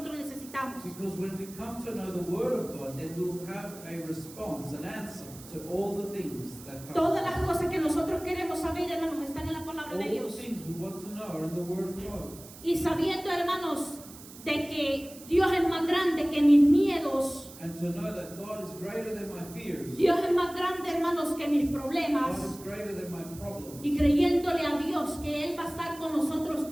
necesitamos. Because when we come to know the Word of God, then we'll have a response, an answer to all the things that come. Todas las cosas que nosotros queremos saber, hermanos, están en la palabra All de the Dios. things we want to know are in the Word of God. Y sabiendo, hermanos, de que Dios es más grande que mis miedos, And to know that God is greater than my fears. Dios es más grande, hermanos, que mis God problemas. is greater than my problems. Y creyéndole a Dios que Él va a estar con nosotros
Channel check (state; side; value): noise; right; hiss, 18 dB below the sound